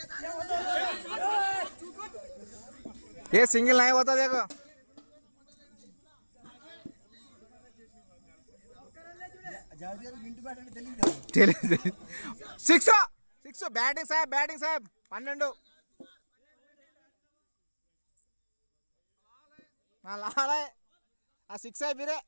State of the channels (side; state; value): both; inverted; correlation -1.00